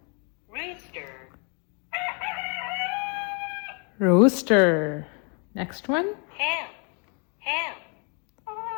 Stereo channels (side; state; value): right; quieter; 36.3 dB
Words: rooster, Rooster. Next one. ham, ham,